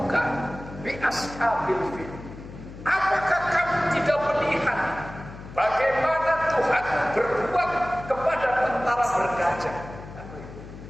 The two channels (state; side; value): noise; left; hum, 14 dB below the sound